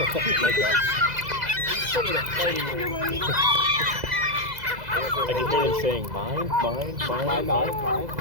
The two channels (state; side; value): late; left; 2.0 ms